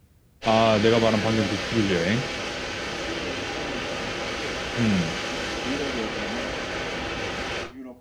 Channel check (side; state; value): both; identical; correlation 1.00